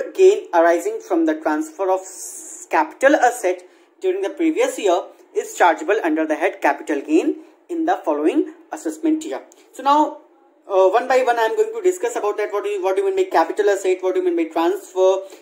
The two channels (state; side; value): identical; both; correlation 1.00